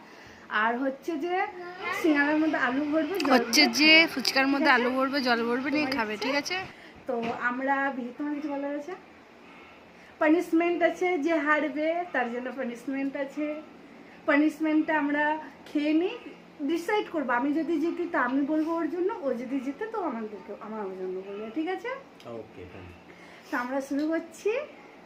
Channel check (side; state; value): both; identical; correlation 1.00